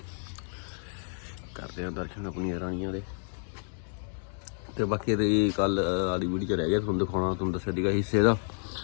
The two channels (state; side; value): silent; right; 58 dB below the other